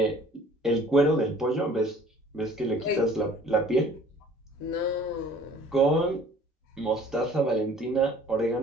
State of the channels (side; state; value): both; normal; correlation 0.52